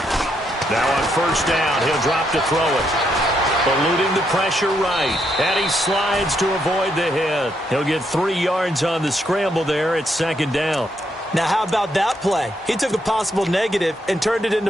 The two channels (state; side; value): normal; both; correlation 0.77